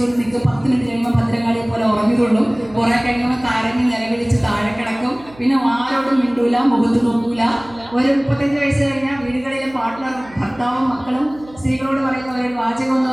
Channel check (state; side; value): noise; right; hum, 22 dB below the sound